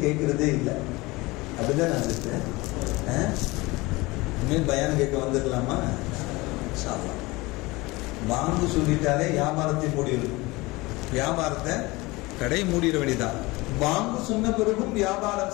கேட்கறதே இல்லை. அப்படிதான் நடந்துட்டு இனிமேல் பயானம் கேட்க வந்துடலாமா? பாங்கு சொல்லிட்டாலே வியாபாரத்தை மூடிடும். வியாபாரத்தை கடை மூடிட வேண்டியதான். பாங்கு சொன்ன பிறகும் வியாபாரம்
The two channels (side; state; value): right; quieter; 22.3 dB